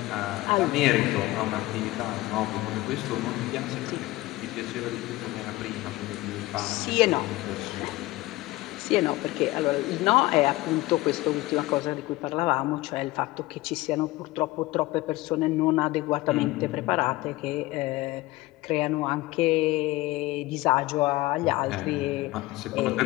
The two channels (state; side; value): quieter; right; 19.3 dB